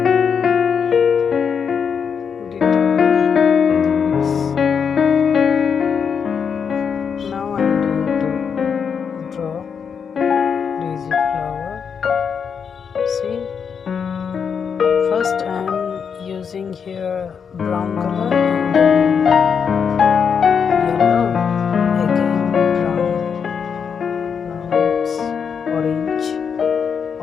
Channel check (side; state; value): right; quieter; 6.7 dB